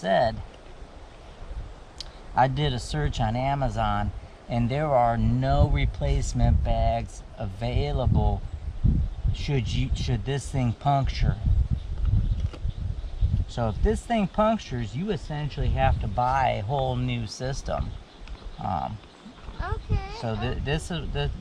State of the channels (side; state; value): both; identical; correlation 1.00